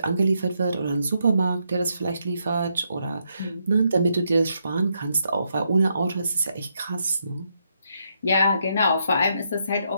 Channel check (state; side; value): inverted; both; correlation -0.78